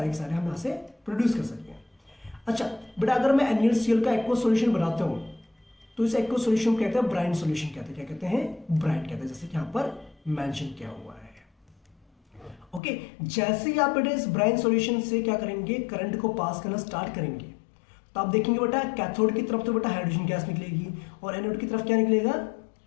के सारे हम यहाँ से प्रोड्यूस कर सकते हैं। अच्छा बेटा, अगर मैं NaCl का एक्वा सॉल्यूशन बनाता हूँ तो इस एक्वा सॉल्यूशन को कहते हैं ब्राइन सॉल्यूशन, कहते हैं, क्या कहते हैं, ब्राइन कहते हैं, जैसे कि यहाँ पर मेंशन किया हुआ है। ओके, जैसे ही आप बेटा इस ब्राइन सॉल्यूशन से क्या करेंगे, करंट को पास करना स्टार्ट करेंगे तो आप देखेंगे बेटा कैथोड की तरफ तो बेटा हाइड्रोजन गैस निकलेगी और एनोड की तरफ क्या निकलेगा,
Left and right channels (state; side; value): drops out; right; at 12.8 s